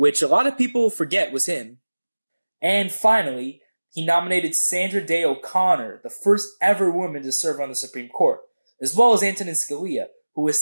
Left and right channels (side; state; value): both; inverted; correlation -1.00